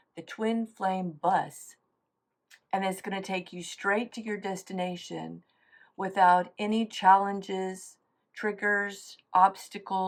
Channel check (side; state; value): both; identical; correlation 1.00